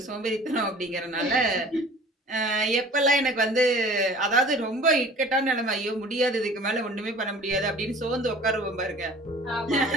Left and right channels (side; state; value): both; normal; correlation 0.46